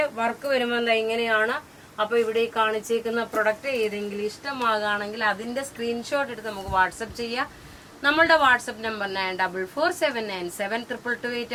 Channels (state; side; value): identical; both; correlation 1.00